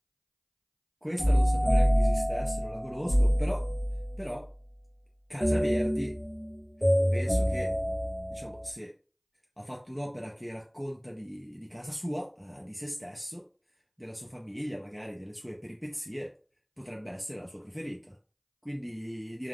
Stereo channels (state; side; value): identical; both; correlation 1.00